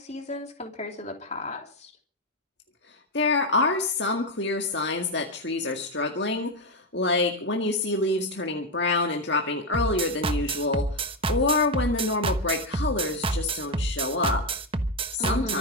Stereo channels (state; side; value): normal; both; correlation 0.08